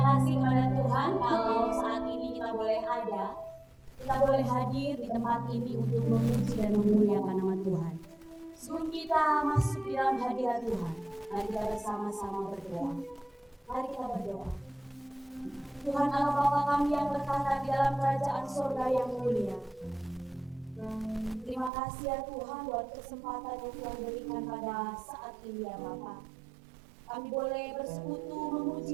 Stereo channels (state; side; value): drops out; left; at 21.7 s